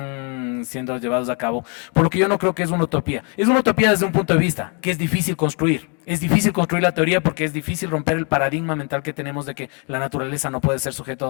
siendo llevados a cabo, por lo que yo no creo que es una utopía. Es una utopía desde un punto de vista, que es difícil construir. Es difícil construir la teoría porque es difícil romper el paradigma mental que tenemos de que la naturaleza no puede ser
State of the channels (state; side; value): quieter; right; 36.4 dB